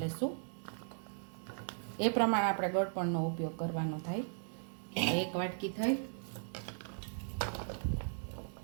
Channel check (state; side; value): silent; left; digital silence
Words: લઈશું। એ પ્રમાણે આપણે ગળપણનો ઉપયોગ કરવાનો થાય। એક વાટકી થઈ।